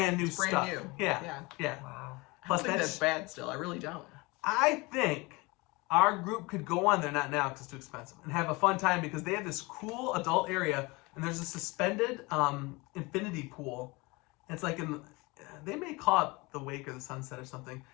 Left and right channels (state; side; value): quieter; right; 24.9 dB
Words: new It's brand stuff. new. Yeah, Yeah. yeah. Wow. I Plus don't think that's that's bad still. I really don't. I think our group could go on there, not now because it's too expensive, and have a fun time because they have this cool adult area and there's a suspended infinity pool. It's like they may call it the wake or the sunset or something.